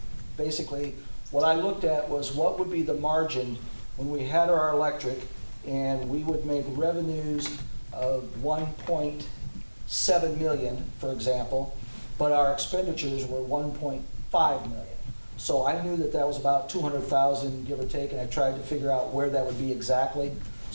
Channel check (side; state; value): both; inverted; correlation -1.00